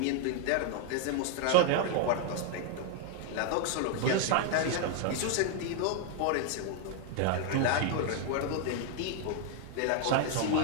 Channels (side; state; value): both; different; correlation 0.00